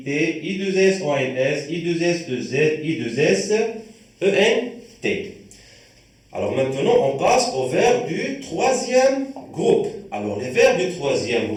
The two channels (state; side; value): identical; both; correlation 1.00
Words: I2S, ONS, I2S, EZ, I2S, ENT. Alors maintenant, on passe aux verbes du troisième groupe. Alors les verbes du troisième